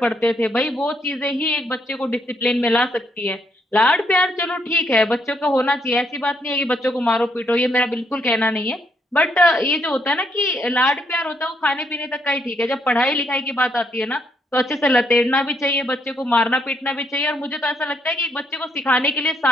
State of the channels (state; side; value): normal; both; correlation 0.74